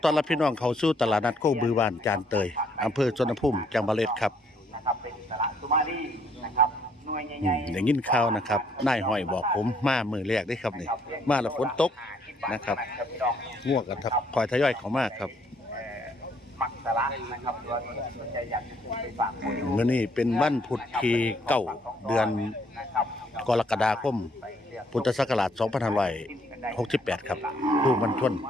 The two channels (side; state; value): both; normal; correlation 0.67